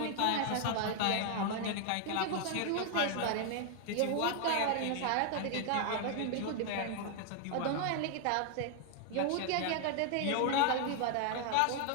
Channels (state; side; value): different; both; correlation 0.00